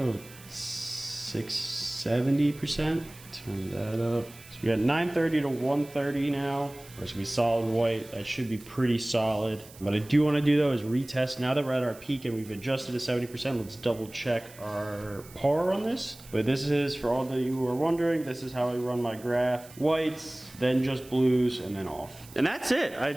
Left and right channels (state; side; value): noise; right; hiss, 21 dB below the sound